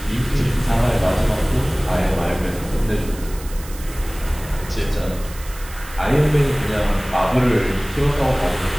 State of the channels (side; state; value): right; noise; hiss, 17 dB below the sound